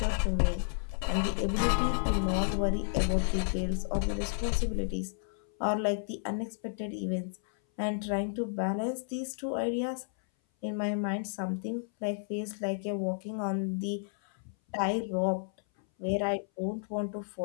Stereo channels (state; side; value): silent; right; 57 dB below the other